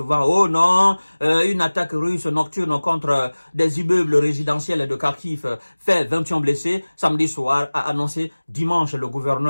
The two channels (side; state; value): both; inverted; correlation -1.00